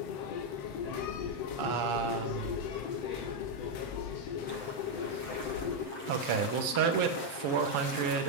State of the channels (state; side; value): late; right; 7.6 ms